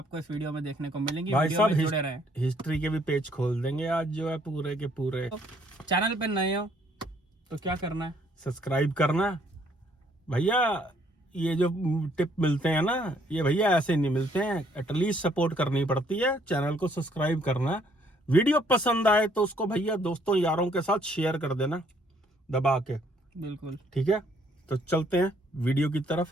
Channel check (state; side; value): normal; both; correlation 0.65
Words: इस वीडियो में देखने को मिलेंगी। भाई वीडियो में साहब जुड़े रहें। हिस्ट्री के भी पेज खोल देंगे आज, जो है पूरे के पूरे। तो चैनल पे नए हो तो क्या करना है, सब्सक्राइब करना भैया। ये जो टिप मिलते हैं ना, ये भैया ऐसे नहीं मिलते हैं, एटलीस्ट सपोर्ट करनी पड़ती है। चैनल को सब्सक्राइब करना, वीडियो पसंद आए तो उसको भैया दोस्तों यारों के साथ शेयर कर देना दबा के। बिल्कुल ठीक है, तो चलते हैं वीडियो की